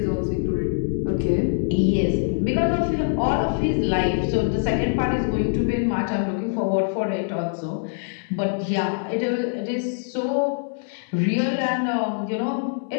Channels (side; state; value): right; silent; 63 dB below the other